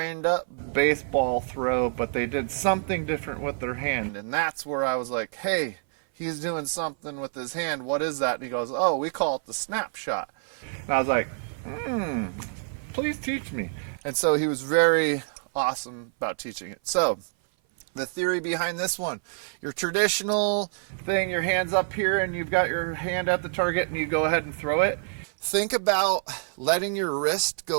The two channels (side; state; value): left; silent; 57 dB below the other